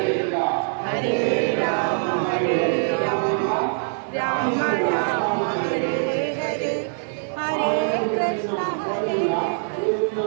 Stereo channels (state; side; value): silent; left; 60 dB below the other